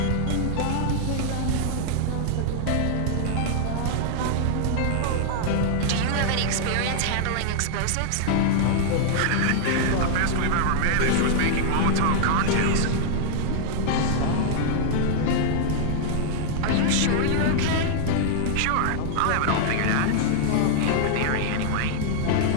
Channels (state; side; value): different; both; correlation -0.01